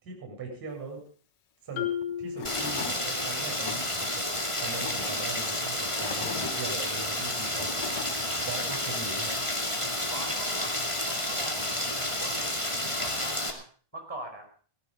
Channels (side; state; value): right; late; 1.5 ms